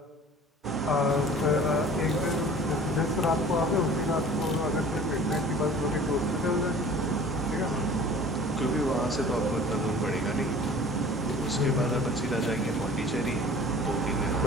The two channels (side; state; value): both; normal; correlation 0.45